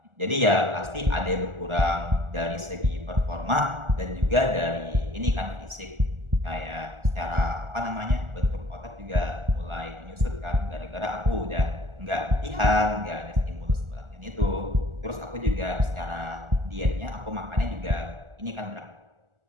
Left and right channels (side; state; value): left; late; 1.4 ms